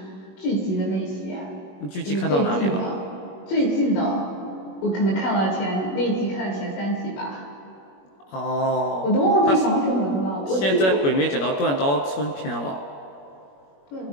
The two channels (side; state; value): right; late; 21 ms